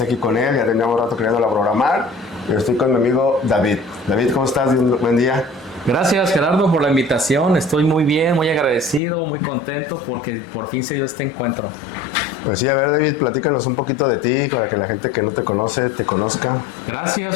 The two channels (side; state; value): right; drops out; at 9.0 s